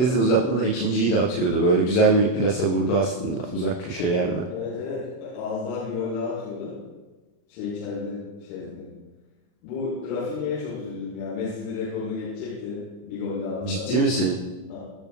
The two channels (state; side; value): late; right; 39 ms